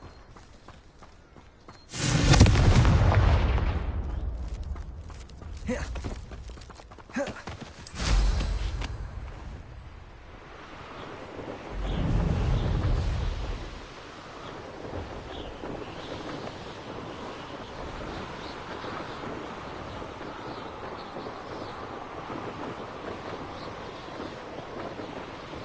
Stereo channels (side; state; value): both; identical; correlation 1.00